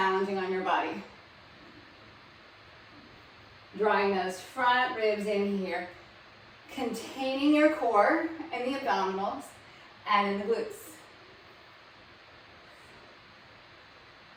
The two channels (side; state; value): both; identical; correlation 1.00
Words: on your body. Drawing those front ribs in here, containing your core and the abdominals and in the glutes.